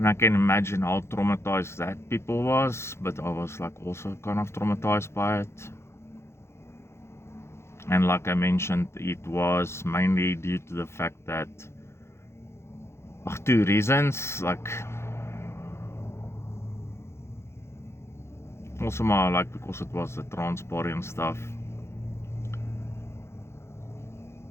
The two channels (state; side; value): late; right; 0.13 ms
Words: I can imagine how traumatized that people was, but I was like also kind of traumatized by it. And like I mentioned, it was mainly due to the fact that, two reasons, like also more like because it was the trans party and stuff.